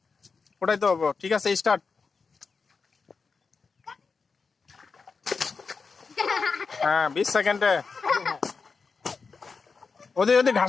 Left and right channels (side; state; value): right; quieter; 4.9 dB